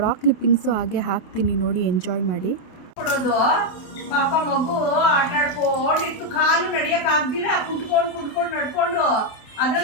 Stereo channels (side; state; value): right; late; 28 ms